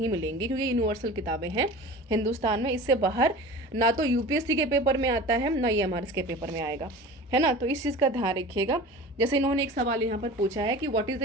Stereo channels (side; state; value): both; normal; correlation 0.37